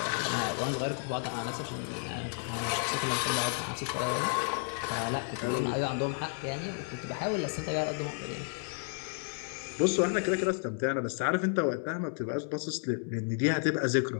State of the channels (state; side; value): silent; right; 56 dB below the other